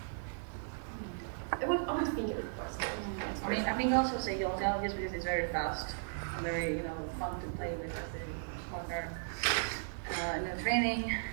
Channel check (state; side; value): silent; left; digital silence